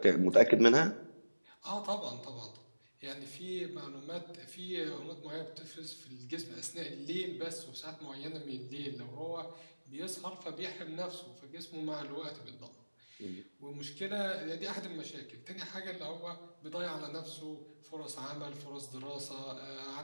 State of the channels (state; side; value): inverted; both; correlation -1.00